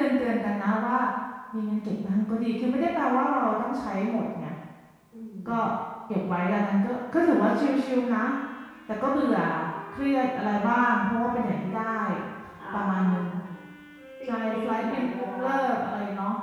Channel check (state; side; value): identical; both; correlation 1.00